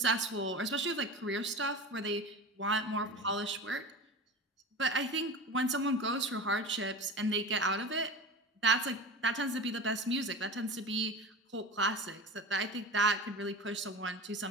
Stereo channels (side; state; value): both; normal; correlation 0.30